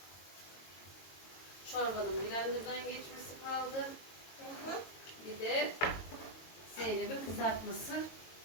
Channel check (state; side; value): late; right; 22 ms